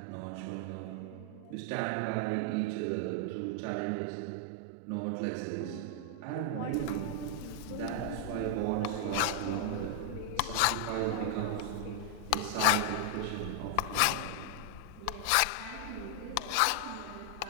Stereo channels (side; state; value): both; different; correlation 0.00